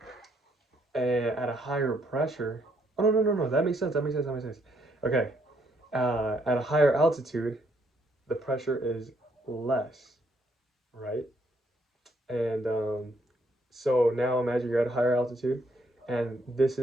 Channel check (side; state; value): both; normal; correlation 0.71